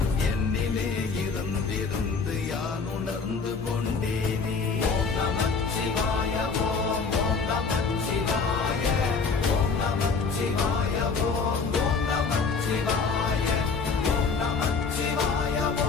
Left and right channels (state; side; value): quieter; right; 4.9 dB